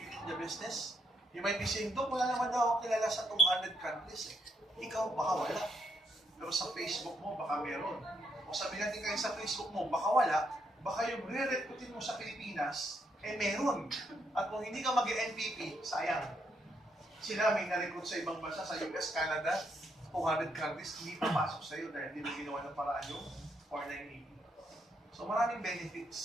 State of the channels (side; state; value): both; normal; correlation 0.76